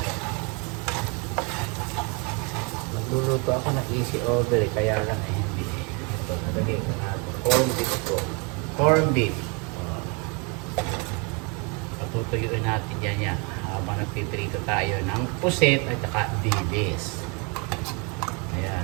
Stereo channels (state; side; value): quieter; left; 32.3 dB